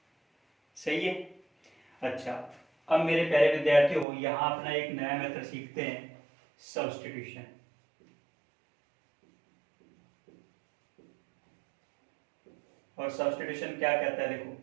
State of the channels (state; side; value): drops out; left; at 4.0 s